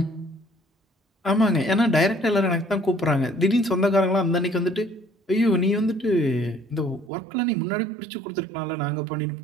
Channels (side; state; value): left; drops out; at 7.1 s